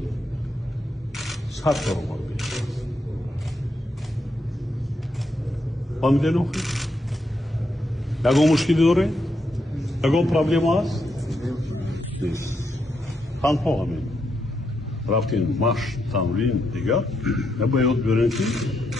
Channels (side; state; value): both; normal; correlation 0.80